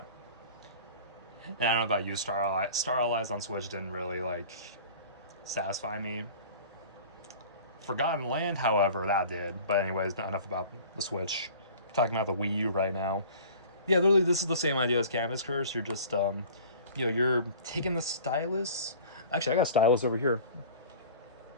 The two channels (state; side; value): inverted; both; correlation -0.43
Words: And I don't know about you, Star Allies on Switch didn't really like satisfy me. Forgotten Land, however, that did. But anyways, not enough about the Switch. Talking about the Wii U right now. Yeah, literally, this is the same idea as Canvas Curse. You're just, you know, you're taking the stylus. Actually, I got a stylus over here.